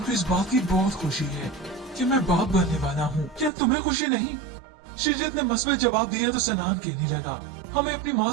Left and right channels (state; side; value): drops out; left; at 3.5 s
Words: इस बात की बहुत खुशी है कि मैं बाप बनने वाला हूँ। क्या तुम्हें खुशी नहीं? श्रीजित ने मस्बत जवाब दिया तो सनान कहने लगा, हमें अपनी